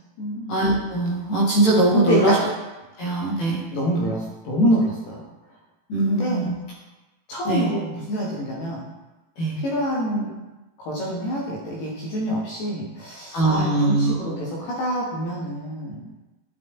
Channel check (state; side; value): late; right; 18 ms